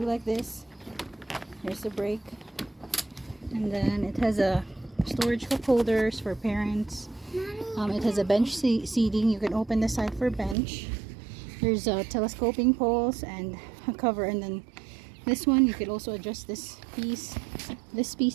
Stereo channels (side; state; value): left; drops out; at 10.6 s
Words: like this. There's the brake, and then it has a storage cup holders for parents. It has a bench seating. You can open the side for bench. There's telescoping poles and a cover, and then this one you could also adjust this piece. This